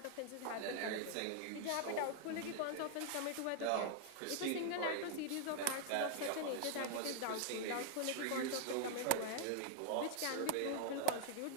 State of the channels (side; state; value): both; different; correlation 0.00